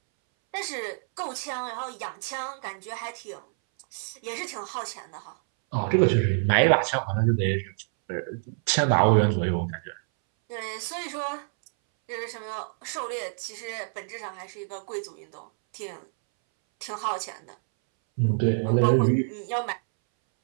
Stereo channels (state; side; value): silent; left; 60 dB below the other